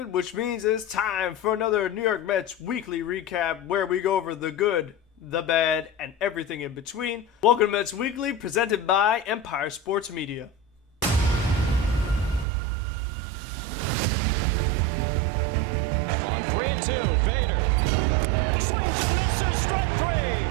which means it's time for another New York Mets weekly recap where we go over the good, the bad, and everything in between. Welcome to Mets Weekly, presented by About Sports Media. On 3-2, Vader swings and misses, strike three.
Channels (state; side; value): drops out; left; at 12.5 s